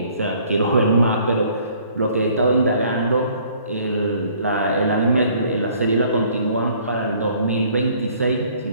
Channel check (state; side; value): inverted; both; correlation -0.59